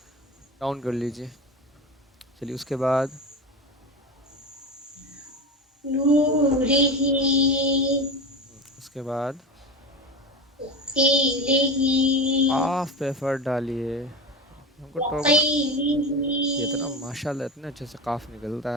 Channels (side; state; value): both; normal; correlation 0.24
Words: ڈاؤن کر لیجئے. چلیے اس کے بعد نورہ اس کے بعد قیلہ قاف پہ ایفرٹ ڈالیے. ہم کو ٹوکنا, یہ اتنا وقیلہ ماشاءاللہ اتنے اچھے سے قاف نکلتا